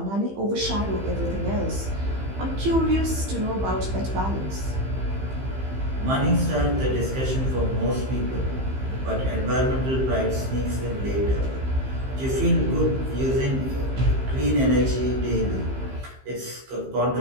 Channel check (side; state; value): left; late; 15 ms